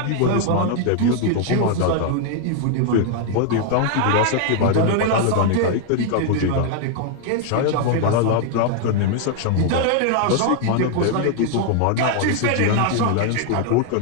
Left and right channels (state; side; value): different; both; correlation 0.00